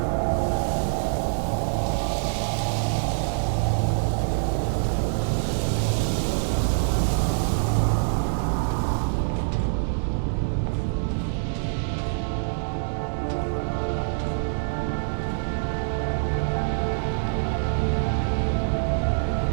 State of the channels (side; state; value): left; silent; digital silence